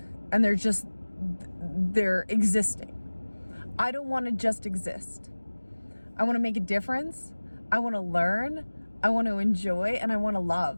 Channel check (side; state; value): both; inverted; correlation -1.00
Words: and they're existing. I don't want to just exist. I want to make a difference. I want to learn. I want to enjoy, and I want to